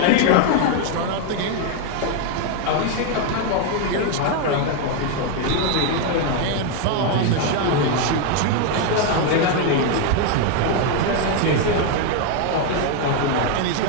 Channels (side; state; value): both; different; correlation 0.01